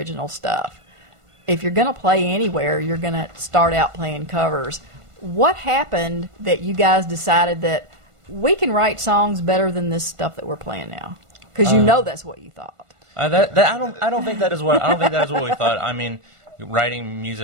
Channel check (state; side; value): late; left; 1.5 ms